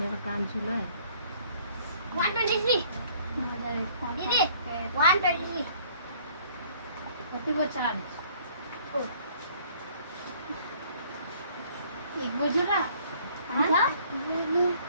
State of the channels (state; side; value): inverted; both; correlation -0.58